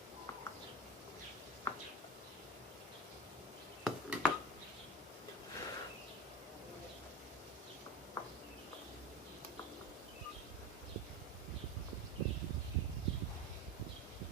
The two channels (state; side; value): normal; both; correlation 0.26